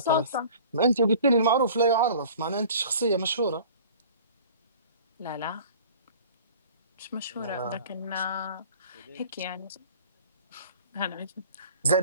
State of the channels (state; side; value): inverted; both; correlation -0.46